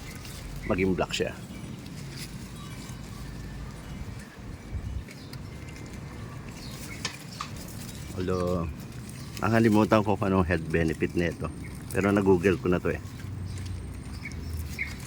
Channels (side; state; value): both; identical; correlation 1.00